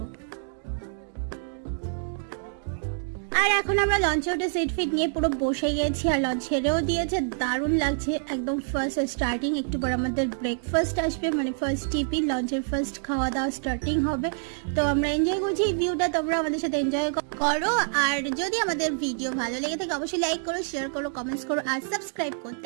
আর এখন আমরা লঞ্চে উঠে সিট ফিট নিয়ে পুরো বসে গেছি আর লঞ্চ ছেড়েও দিয়েছে। দারুণ লাগছে একদম ফার্স্ট স্টার্টিং। একটু পর আমাদের ব্রেকফাস্ট আসবে, মানে ফার্স্ট টিফিন, লঞ্চের ফার্স্ট খাওয়া দাওয়া স্টার্টিং হবে। তো আমরা এনজয় করছি এই ভিউটা, তোমরা আমাদের সাথে এনজয় করো। আর যদি আমাদের ভিডিও ভালো লেগে থাকে অবশ্যই লাইক করো, শেয়ার করো, কমেন্টস করো আর সাবস্ক্রাইব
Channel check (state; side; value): silent; left; digital silence